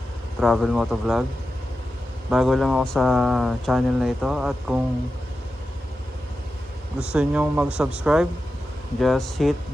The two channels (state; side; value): normal; both; correlation 0.91